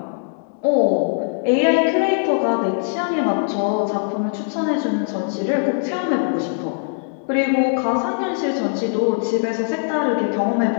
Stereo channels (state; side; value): silent; right; 65 dB below the other